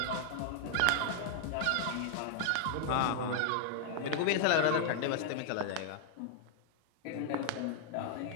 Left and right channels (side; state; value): both; different; correlation -0.01